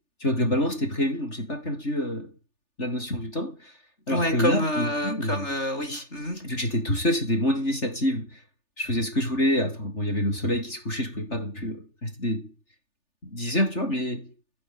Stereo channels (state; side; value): late; right; 3.4 ms